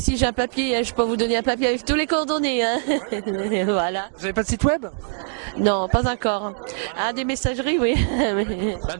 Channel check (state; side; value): silent; left; 64 dB below the other